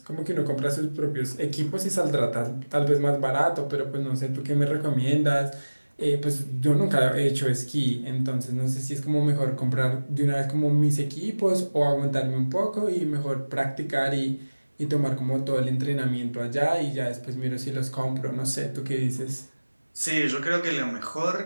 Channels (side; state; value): both; inverted; correlation -1.00